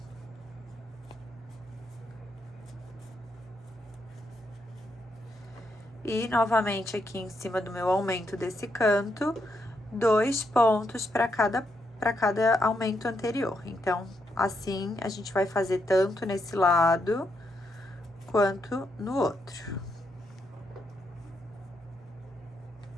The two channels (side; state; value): both; normal; correlation 0.80